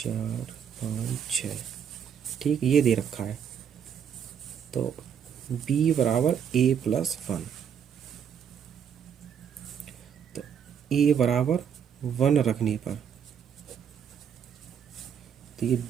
5 6, ठीक, ये दे रखा है। तो b बराबर a प्लस 1, तो a बराबर 1 रखने पर, तो ये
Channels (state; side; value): quieter; left; 8.0 dB